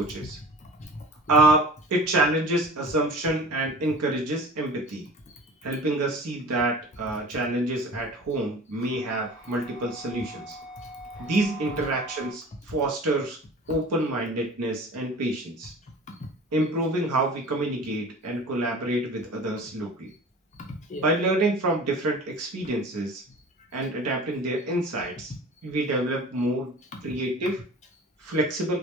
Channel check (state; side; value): normal; both; correlation 0.40